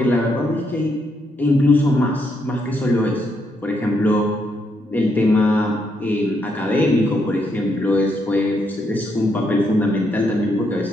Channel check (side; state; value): both; normal; correlation 0.77